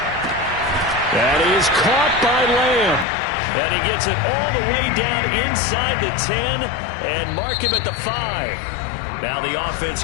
That is caught by Lamb. And he gets it all the way down inside the 10 and mark him at the 5. Now the offense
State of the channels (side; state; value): right; drops out; at 3.1 s